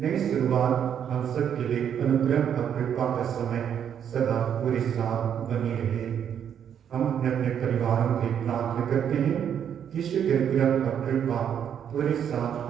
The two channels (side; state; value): left; quieter; 8.7 dB